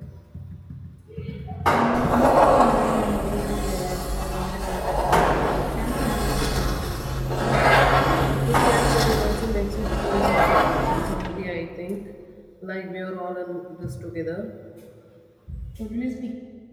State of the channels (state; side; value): identical; both; correlation 1.00